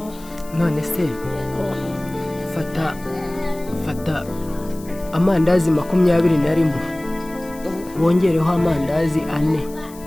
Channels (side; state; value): left; noise; hiss, 21 dB below the sound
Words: None se fata amandazi 21 wongereho amandazi 4,